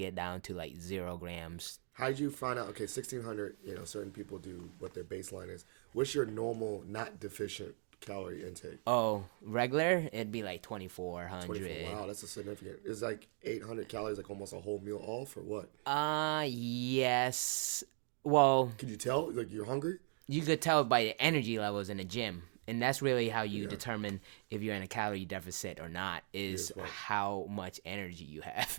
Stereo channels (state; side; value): silent; left; 52 dB below the other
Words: down to like 0 grams. How did you find out? Okay, 1,600, certain people do what their baseline is. What's your normal, not deficient calorie intake? Oh, regular? It'd be like 2,400. 24, wow, that's a significant. It's like 800 calories, like almost a whole meal off, or what? Yes. Well, could you tell? Like, you're hungry? You could tell by the energy levels in the gym. And that's really how you determine if you're in a calorie deficit or not, is how much energy you have.